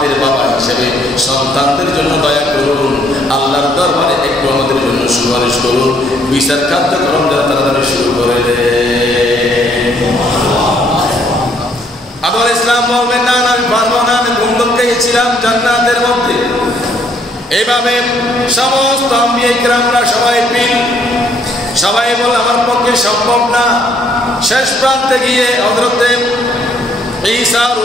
বাবা হিসেবে সন্তানদের জন্য দয়া করুন, আল্লাহর দরবারে একটু আমাদের জন্য সুপারিশ করুন, বিচার কার্যক্রম যারা তাড়াতাড়ি শুরু করে দেন। আদম আলাইহিস সালাম বলবেন না আমি পারবো না, আমি বন্ধুকে গেছিলাম জান্নাতের মধ্যে। এইভাবে সমস্ত আম্বিয়া কিরামরা সবাই পিল, সবাই বলে আমার পক্ষে সম্ভব না। শেষ প্রান্তে গিয়ে হযরতে ঈসা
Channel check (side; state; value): both; normal; correlation 0.67